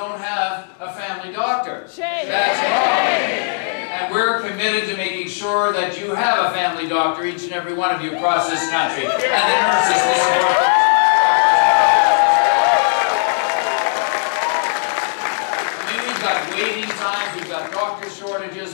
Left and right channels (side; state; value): right; silent; digital silence